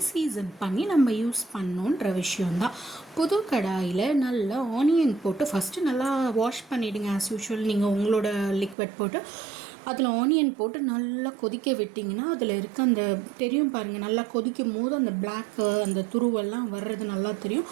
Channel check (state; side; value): drops out; left; at 8.8 s